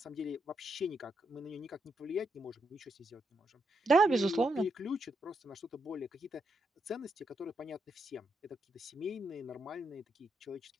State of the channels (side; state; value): both; normal; correlation 0.81